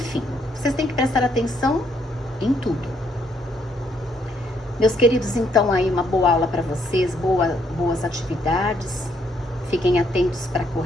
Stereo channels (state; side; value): normal; both; correlation 0.72